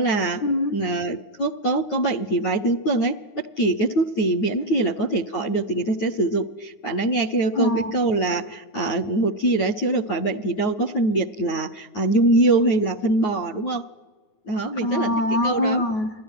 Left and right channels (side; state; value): right; late; 9.5 ms